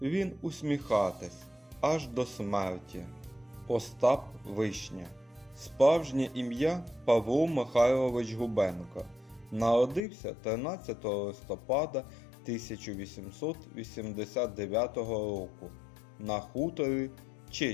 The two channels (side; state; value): right; drops out; at 10.0 s